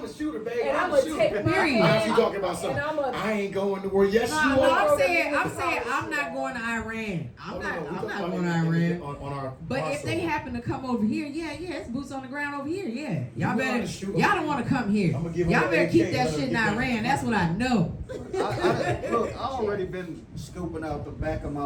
a shooter, baby. And I'm I'ma a shooter. take my Period. Now she hand. talking about something. And I'ma. I ain't going to war. Yes, No, you no, are. I'm saying I'm not going to Iran. I'm not going to Iran. On our But if they crossover. happen to come over here, yeah, it's boots on the ground over here, yeah. You Y'all know how better, to shoot 'em. y'all don't want to come here. I'ma give 'em Y'all an better AK, keep that let 'em shit in get that. Iran. That's what I know. Look, I already been scoping out the back of my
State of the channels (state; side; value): identical; both; correlation 1.00